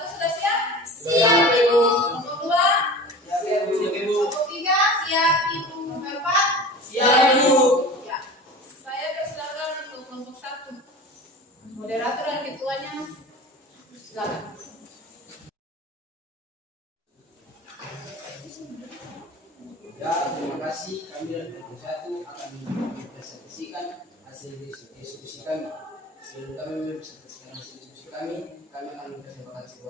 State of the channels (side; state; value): both; normal; correlation 0.37